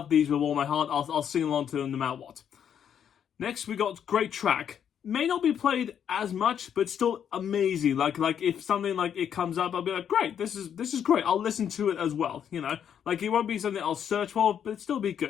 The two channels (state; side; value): quieter; right; 8.7 dB